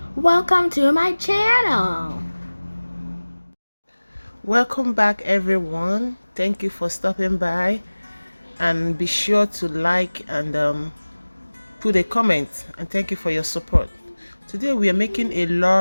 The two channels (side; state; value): both; inverted; correlation -1.00